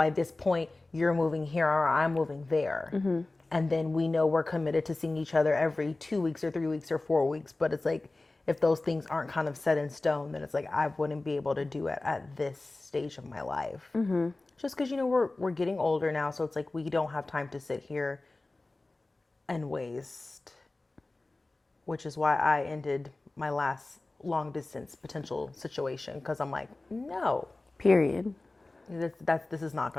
this point, you're moving here or I'm moving there. And then we know we're committed to seeing each other every 2 weeks or 3 weeks or 4 weeks. But it's like, if those things aren't kind of set in stone, then it's like, I wouldn't be able to do it at this stage of my life. Just because, we're getting older now. So it's like, we don't have time to sit here and waste. Which is why I ended my last long distance potential situation. Because I'm like, no. Period. This is not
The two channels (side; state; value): right; quieter; 3.0 dB